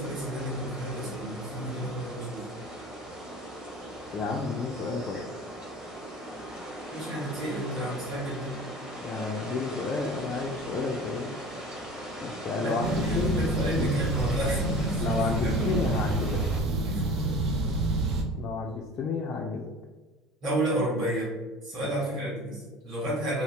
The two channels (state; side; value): normal; both; correlation 0.40